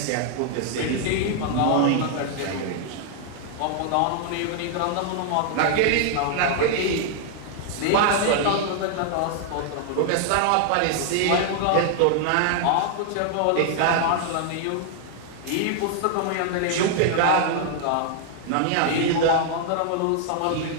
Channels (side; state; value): both; different; correlation 0.00